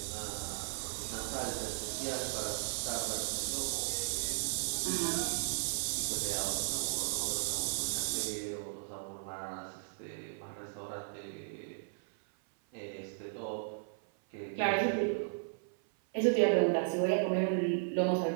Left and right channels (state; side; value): silent; left; 54 dB below the other